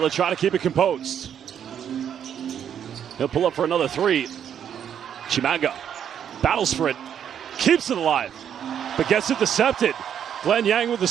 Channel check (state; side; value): quieter; left; 8.9 dB